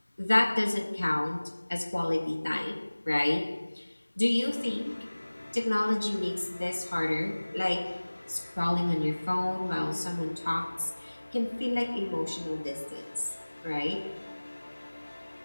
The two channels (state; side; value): inverted; both; correlation -1.00